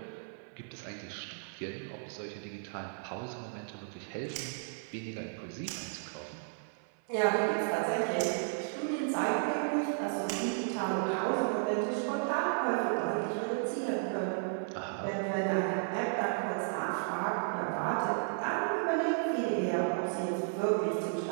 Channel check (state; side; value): silent; left; 55 dB below the other